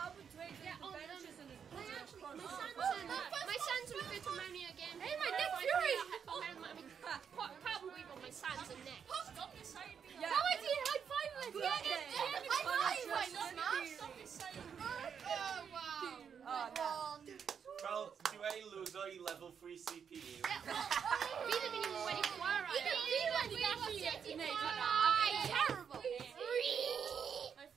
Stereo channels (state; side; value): quieter; left; 7.2 dB